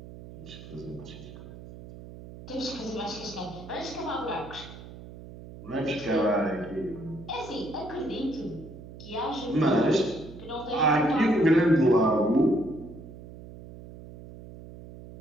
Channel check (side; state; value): right; noise; hum, 15 dB below the sound